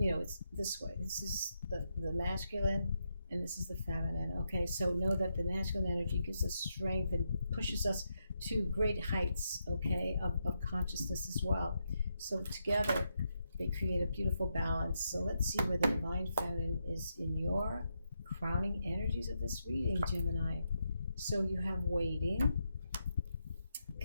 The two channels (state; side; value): inverted; both; correlation -0.82